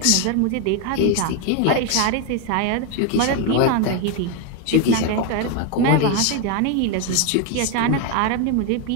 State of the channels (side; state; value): both; different; correlation 0.02